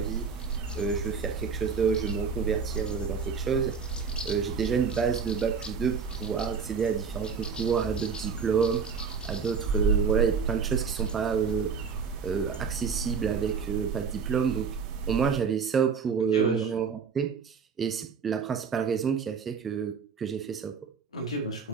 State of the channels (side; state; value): left; quieter; 5.8 dB